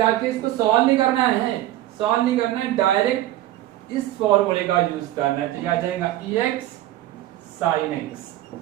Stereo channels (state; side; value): quieter; left; 14.6 dB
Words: इसको सॉल्व नहीं करना है, सॉल्व नहीं करना है, डायरेक्ट इस फॉर्मूले का यूज करना है। तो ये आ जाएगा ex sin x